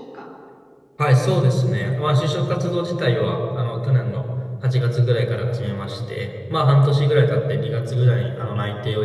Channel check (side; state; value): both; identical; correlation 1.00